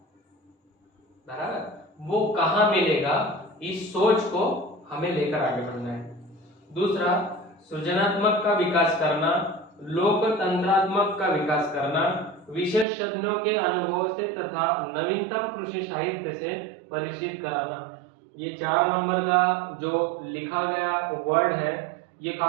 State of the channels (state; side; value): drops out; left; at 12.9 s